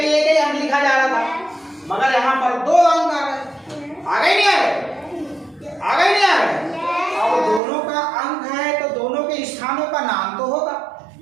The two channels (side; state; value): left; drops out; at 7.6 s